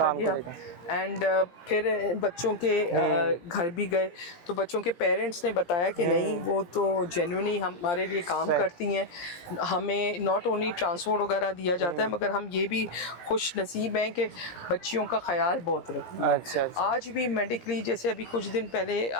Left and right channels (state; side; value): late; right; 17 ms